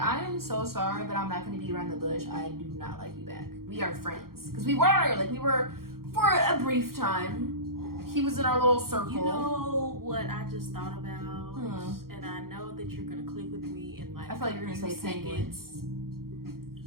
am so sorry, but I'm not going to beat around the bush. I do not like you back. We are friends. Because we were for a brief time. He was in our little circle. You know what I just thought about? And I know that you're going to click with me in like I feel like you're going to say seconds.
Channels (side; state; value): left; late; 0.93 ms